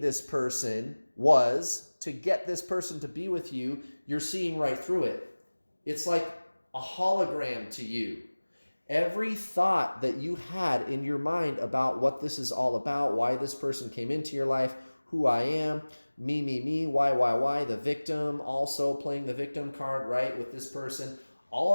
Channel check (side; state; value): both; inverted; correlation -1.00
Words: person was to get this person to be with you, you're seeing right through it. It's like a hologram to you. Every thought that you had in your mind about what this is all about, why this person came into your life, who I am, me, why, the victim, also playing the victim card, right, with this person. All